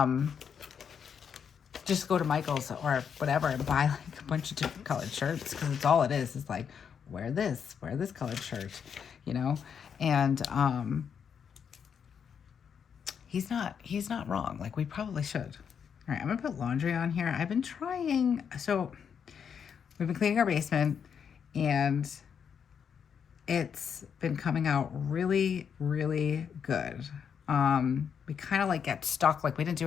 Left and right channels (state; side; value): quieter; right; 7.3 dB